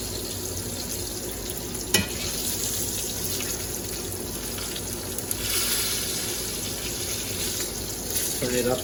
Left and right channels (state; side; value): identical; both; correlation 1.00